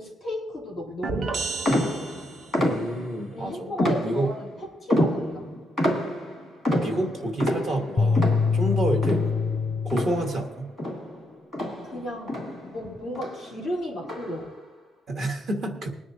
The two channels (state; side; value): normal; both; correlation 0.78